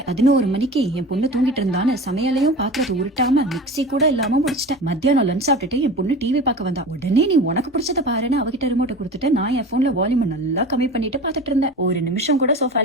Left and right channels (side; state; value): both; normal; correlation 0.34